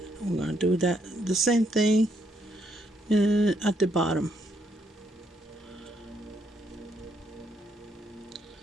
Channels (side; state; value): both; normal; correlation 0.74